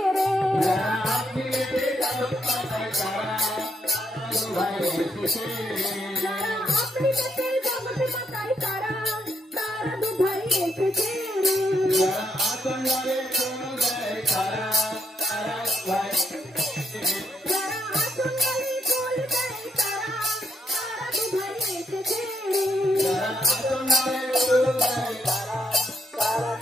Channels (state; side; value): normal; both; correlation 0.76